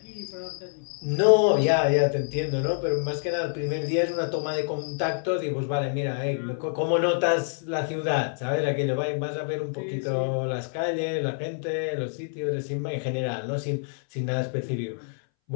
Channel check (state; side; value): silent; right; 60 dB below the other